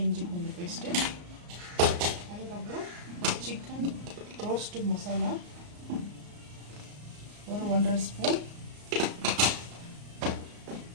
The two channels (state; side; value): late; left; 34 ms